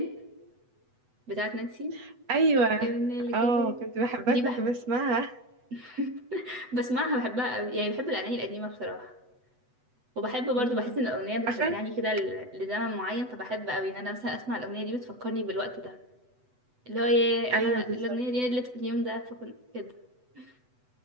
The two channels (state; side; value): late; left; 8.1 ms